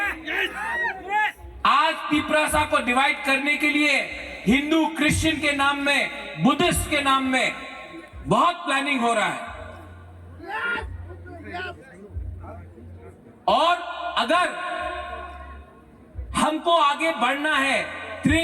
आज तिपरासा को डिवाइड करने के लिए हिंदू क्रिश्चियन के नाम में, बुद्धिस्ट के नाम में बहुत प्लानिंग हो रहा है। और अगर हमको आगे बढ़ना है,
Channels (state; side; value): identical; both; correlation 1.00